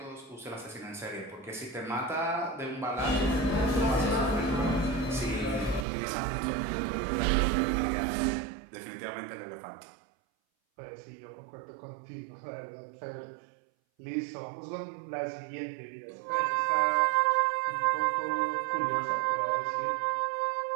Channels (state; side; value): drops out; left; at 5.9 s